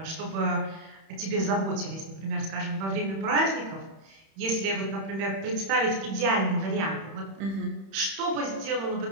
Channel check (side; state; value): left; late; 31 ms